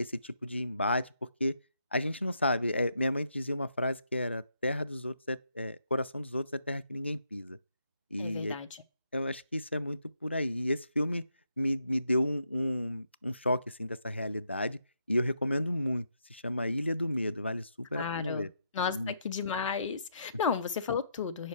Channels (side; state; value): both; inverted; correlation -0.77